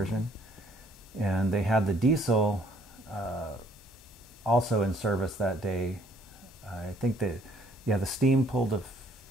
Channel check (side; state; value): both; normal; correlation 0.63